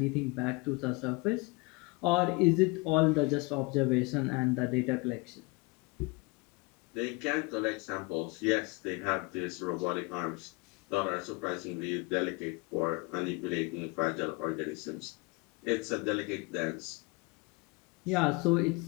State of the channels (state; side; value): quieter; right; 26.6 dB